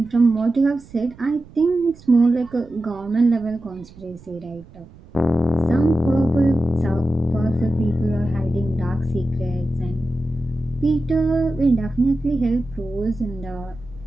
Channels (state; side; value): noise; right; rumble, 22 dB below the sound